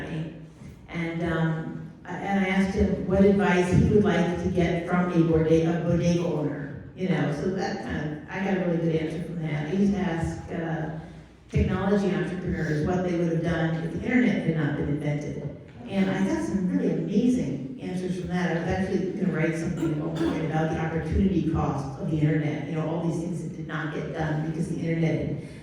And I asked him what advice he would like to get from a bodega owner. You know, so that I got a really good answer from that. I used to ask technology entrepreneurs what they would have done if the internet had not been invented. And I got some really amazing answers from that. I was actually going to write something at one point about the opportunity cost of the internet. You know, all these things that did not get done because the internet had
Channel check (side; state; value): both; identical; correlation 1.00